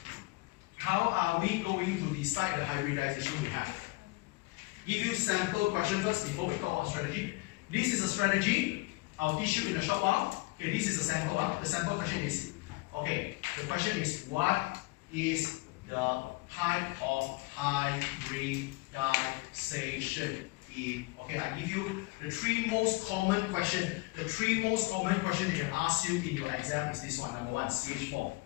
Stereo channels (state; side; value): quieter; right; 24.2 dB